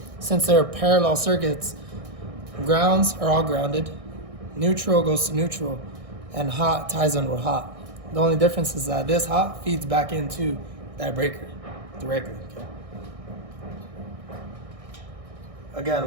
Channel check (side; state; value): left; late; 1.6 ms